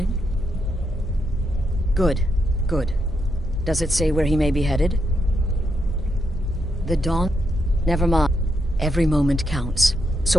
Good, good. Does it say where he may be headed? The Dawn? Never mind. Every moment counts.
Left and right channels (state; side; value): normal; both; correlation 0.81